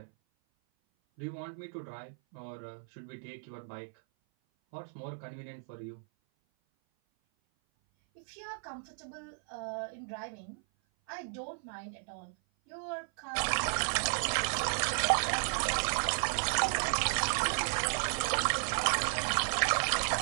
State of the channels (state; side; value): silent; left; 55 dB below the other